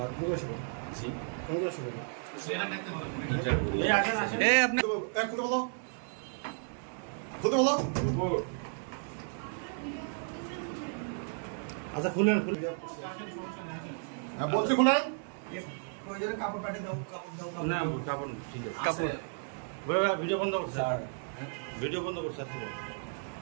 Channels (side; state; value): left; silent; 56 dB below the other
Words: তুমি বসো। জি তুমি বসো। এই আসেন আসেন এই আপনি এক খুলে বলো, খুলে বলো। আচ্ছা খুলেন, খুলে হ্যাঁ বলছি খুলেন। কাপড় পাঠিয়ে দাও, কাপড় দাও। না কাপড় ঠিক আছে কাপড় ভিডিও বন্ধ করছে স্যার ভিডিও বন্ধ করছে